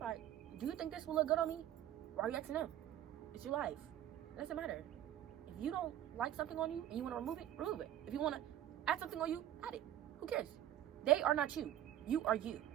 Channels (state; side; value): quieter; left; 12.0 dB